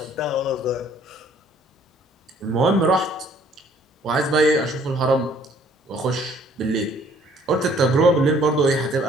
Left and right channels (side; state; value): both; normal; correlation 0.59